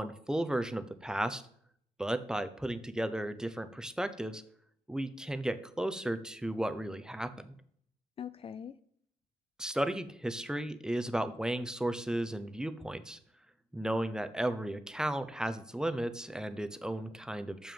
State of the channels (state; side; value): normal; both; correlation 0.92